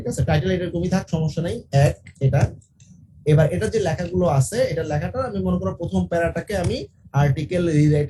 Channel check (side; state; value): both; identical; correlation 1.00